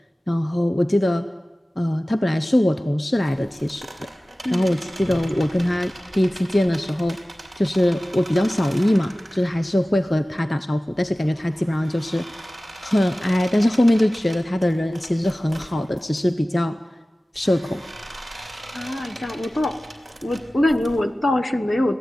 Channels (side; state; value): both; normal; correlation 0.97